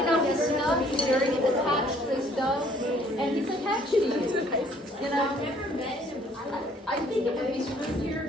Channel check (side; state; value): both; normal; correlation 0.60